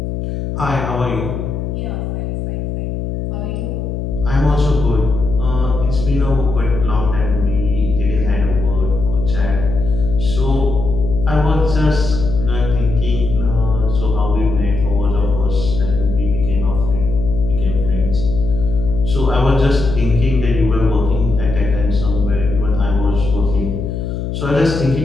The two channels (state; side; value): noise; left; hum, 4 dB below the sound